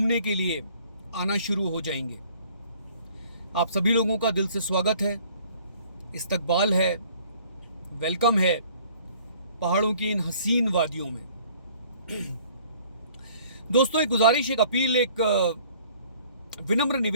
के लिए आना शुरू हो जाएंगे। आप सभी लोगों का दिल से स्वागत है, इस्तकबाल है, वेलकम है पहाड़ों की इन हसीन वादियों में। दोस्तों, एक गुजारिश, एक अपील, एक विनम्र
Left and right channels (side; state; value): both; inverted; correlation -0.56